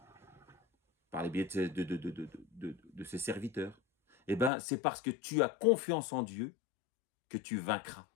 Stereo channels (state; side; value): drops out; right; at 4.5 s